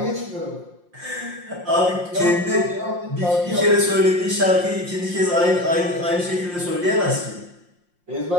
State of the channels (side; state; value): left; late; 5.7 ms